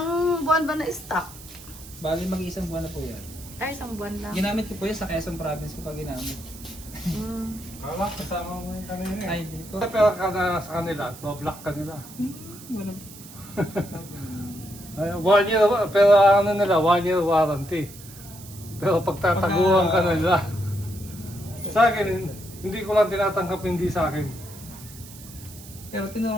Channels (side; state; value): right; noise; hiss, 17 dB below the sound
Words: buwan ba na stock? Bali mag-iisang buwan na po yan. Ay, isang buwan lang. Ginamit ko po yan sa Quezon Province ko pa ginamit. Kala, kasama mo yung kanina eh. Ay, hindi po. Pero ka na sa kanila, no-block ka nila. Wala. Ay, 1 year, pero ano nila, 1 year warranty. Pero pagtataguan ka nila. Sa akin, hindi ko lang tinatanggap hindi sa akin. Pero